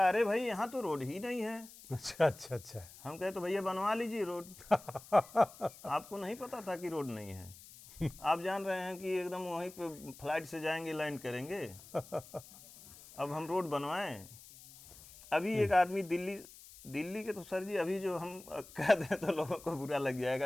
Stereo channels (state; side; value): noise; left; hiss, 19 dB below the sound